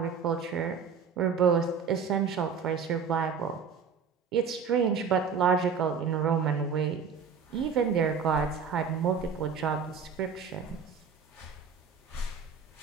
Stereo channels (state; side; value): quieter; left; 6.0 dB